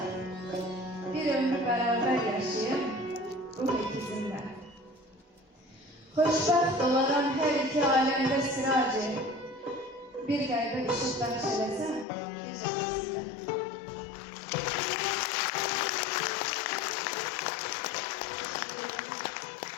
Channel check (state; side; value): drops out; right; at 12.1 s